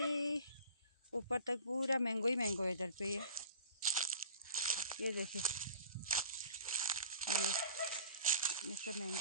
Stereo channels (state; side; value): inverted; both; correlation -0.46